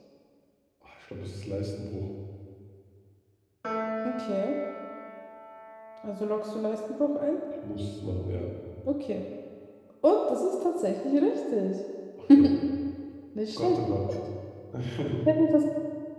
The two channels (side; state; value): both; identical; correlation 1.00